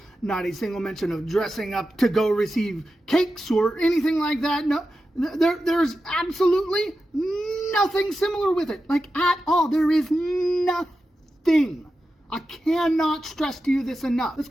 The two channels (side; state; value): both; normal; correlation 0.91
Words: not a single mention of dressing up to go receive cakes or anything like that. No, there's absolutely nothing similar with it, like at all. There is nothing. thing. I cannot stress to you this enough. Let's